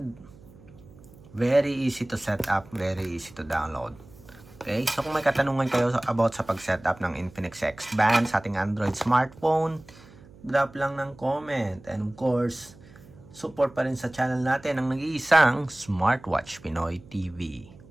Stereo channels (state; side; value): noise; right; hum, 23 dB below the sound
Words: very easy to set up. Very easy to download. Okay? So kung may katanungan kayo about sa pag-set up ng Infinix X Band sa ating Android smartphone, drop lang ng comment. And of course, support pa rin sa channel natin ang nag-iisang Smartwatch Pinoy TV.